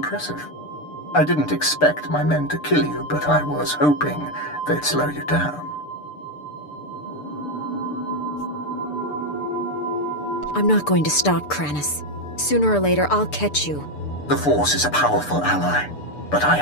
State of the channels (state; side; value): late; right; 6.8 ms